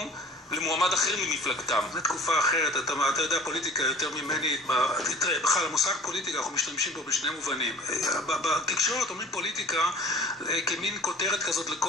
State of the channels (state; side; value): normal; both; correlation 0.46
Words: למועמד אחר ממפלגתם. זו תקופה אחרת, אתה יודע פוליטיקה יותר ממני, תראה, בכלל המושג פוליטיקה אנחנו משתמשים פה בשני מובנים. בתקשורת אומרים פוליטיקה כמין כותרת כזאת